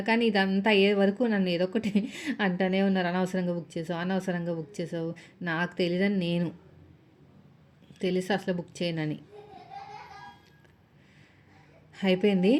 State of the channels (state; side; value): identical; both; correlation 1.00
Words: కానీ ఇదంతా అయ్యే వరకు నన్ను ఏదో ఒకటి అంటూనే ఉన్నారు, అనవసరంగా బుక్ చేసావు. నాకు తెలియదని, నేను తెలిసి అసలు బుక్ చేయనని. అయిపోయింది.